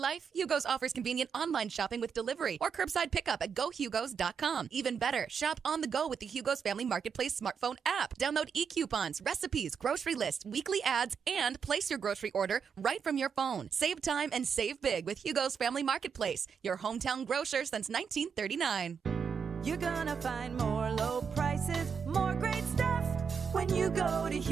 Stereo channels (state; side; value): quieter; left; 6.5 dB